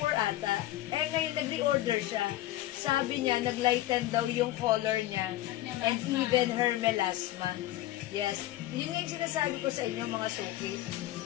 ata. Ngayon nag-reorder siya. Sabi niya, nag-lighten daw yung color niya. And even her melasma. Yes. Yun nga yung sinasabi ko sa inyo, mga suki.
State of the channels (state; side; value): quieter; right; 15.2 dB